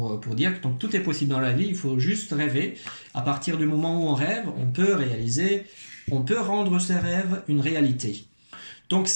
dire que donc, tout est possible dans la vie, il faut juste rêver. À partir du moment où on rêve, on peut réaliser, on peut rendre ses rêves une réalité. Donc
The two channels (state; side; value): inverted; both; correlation -1.00